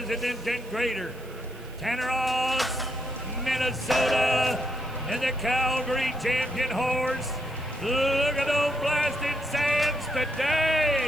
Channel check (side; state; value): right; noise; hiss, 24 dB below the sound